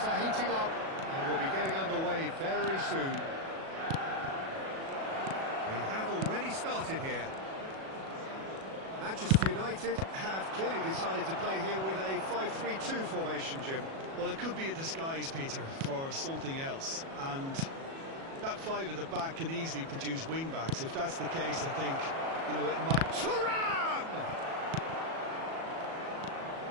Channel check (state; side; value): late; left; 37 ms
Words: are heating up, and we'll be getting underway very soon. We have already started here. Manchester United have clearly decided to play here with a 5-3-2 formation, Jim. Well, it could be a disguise, Peter, for something else. And that five at the back can easily produce wing-backs. If that's the case, I think, you know, it might... Thuram!